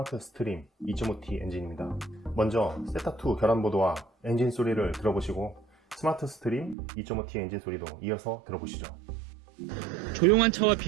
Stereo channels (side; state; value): left; drops out; at 6.8 s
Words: 스트림 2.5T 엔진입니다. 먼저 세타2 결함 보도와 엔진 소리를 들어보시고 스마트 스트림 2.5T 엔진 소리도 이어서 들어보시죠. 조용한 차와